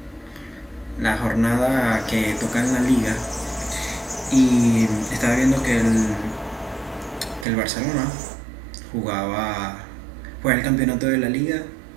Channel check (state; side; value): drops out; left; at 7.5 s